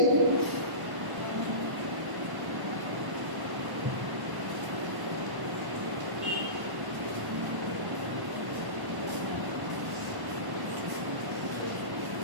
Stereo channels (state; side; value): late; left; 1.1 ms